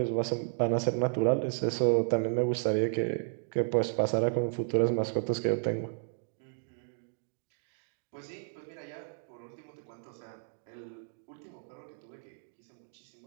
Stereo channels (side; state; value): left; silent; digital silence